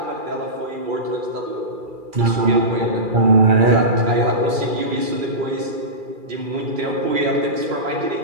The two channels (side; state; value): left; late; 2.4 ms